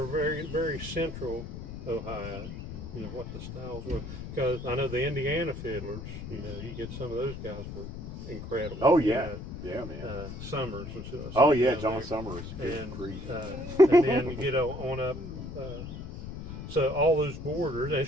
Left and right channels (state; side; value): noise; left; rumble, 9 dB below the sound